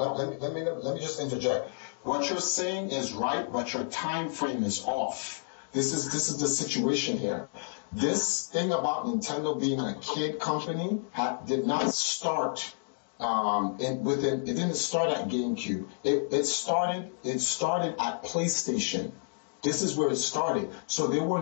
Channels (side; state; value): right; silent; digital silence